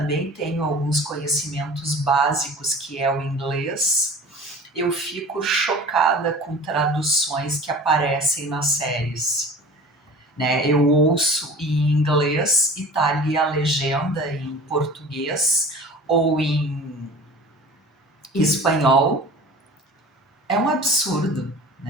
tenho alguns conhecimentos básicos, que é o inglês. Eu fico chocada com traduções que aparecem nas séries, né? Eu ouço em inglês e tá ali a legenda em português ou em espanhol. É um absurdo,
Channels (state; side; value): normal; both; correlation 0.41